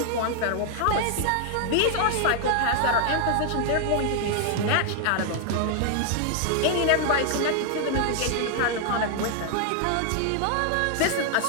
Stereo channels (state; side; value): different; both; correlation 0.00